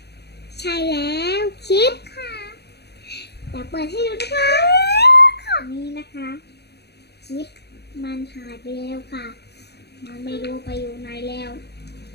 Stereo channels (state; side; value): late; right; 0.48 ms